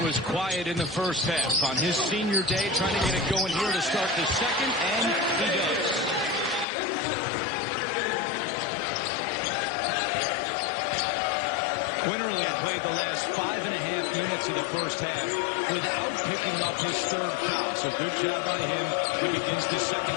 was quiet in the first half. On his senior day, trying to get it going here to start the second, and he does. Quinterly played the last 5.5 minutes of the first half without picking up his third foul. So good job by him. He begins the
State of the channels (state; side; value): drops out; right; at 6.7 s